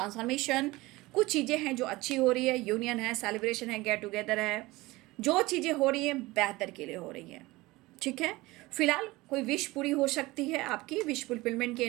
कुछ चीज़ें हैं जो अच्छी हो रही है, यूनियन है, सेलिब्रेशन है, गेट टुगेदर है, जो चीज़ें हो रही हैं बेहतर के लिए हो रही हैं। ठीक है, फिलहाल कोई विश पूरी हो सकती है, आपकी विश फुलफिलमेंट की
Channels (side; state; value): left; quieter; 20.5 dB